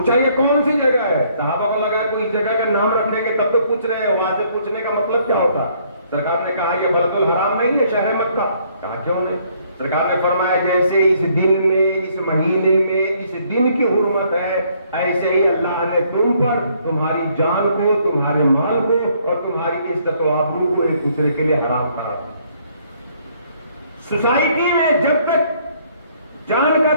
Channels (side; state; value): both; inverted; correlation -0.65